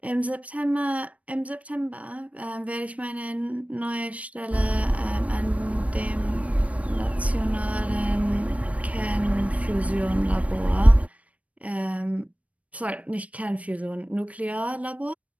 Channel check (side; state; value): left; late; 0.066 ms